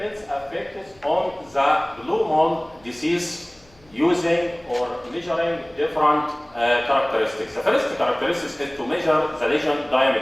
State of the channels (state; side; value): noise; left; hum, 29 dB below the sound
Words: affect on the blue mold disease using or measuring different characteristics. The first characteristic is to measure the lesion